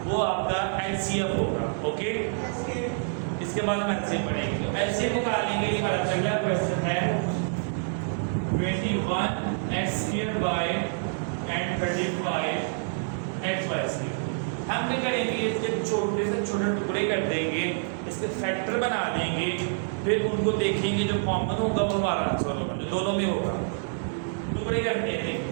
वो आपका HCF होगा। ओके, इसके बाद हम LCM पढ़ेंगे। तो LCM निकालने के लिए हमारा पहला क्वेश्चन है 21x² and 35xy²। हम क्या करेंगे, इसके छोटे से छोटे टुकड़े कर देंगे, इसके फैक्टर बना देंगे, फिर उनको देखेंगे, जो कॉमन होगा वो हमारा आंसर होगा, जो दोनों में होगा। टुकड़े करते हैं,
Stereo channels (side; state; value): left; silent; digital silence